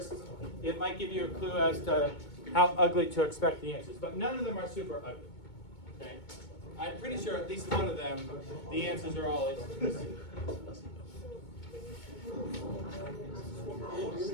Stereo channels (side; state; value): right; late; 2.2 ms